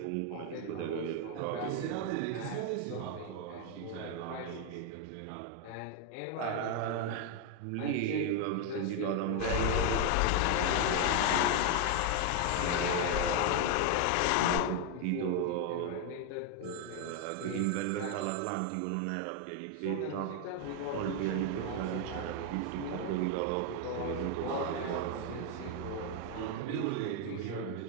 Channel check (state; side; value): different; both; correlation 0.01